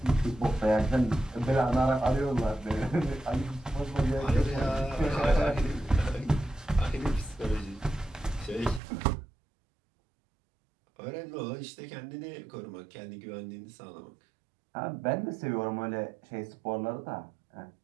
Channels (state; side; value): drops out; left; at 8.8 s